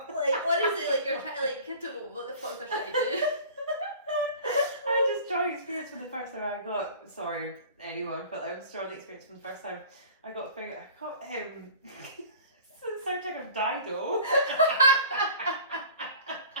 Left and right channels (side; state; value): both; inverted; correlation -0.44